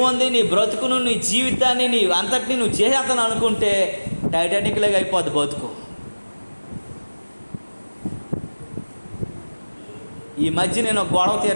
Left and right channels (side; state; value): both; inverted; correlation -1.00